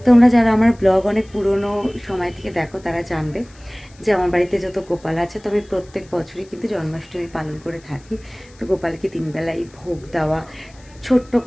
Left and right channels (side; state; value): left; noise; hiss, 27 dB below the sound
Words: তোমরা যারা আমার ব্লগ অনেক পুরনো সময় থেকে দেখো তারা জানবে যে আমার বাড়িতে যত গোপাল আছে, তবে প্রত্যেক বছরই কিন্তু জন্মাষ্টমী পালন করে থাকি। তো গোপালকে 3 বেলাই ভোগ দেওয়া, ছোট্ট